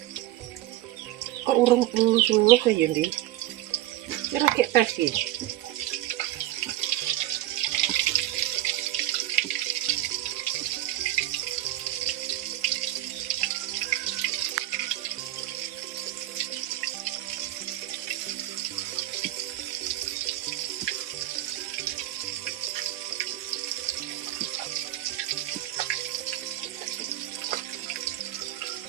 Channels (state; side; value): quieter; left; 14.8 dB